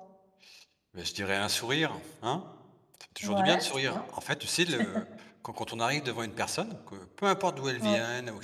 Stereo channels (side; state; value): both; identical; correlation 1.00